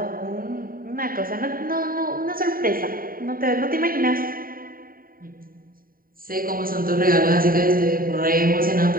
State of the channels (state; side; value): late; left; 0.41 ms